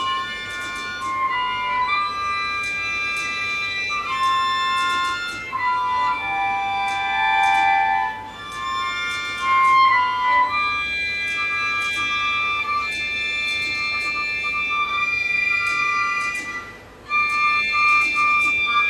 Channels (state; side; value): identical; both; correlation 1.00